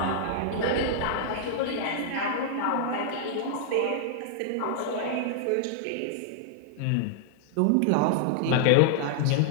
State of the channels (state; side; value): different; both; correlation -0.01